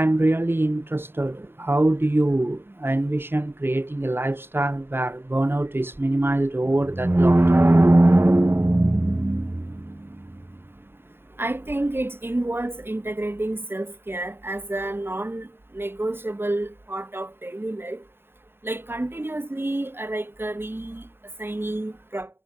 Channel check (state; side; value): late; left; 0.11 ms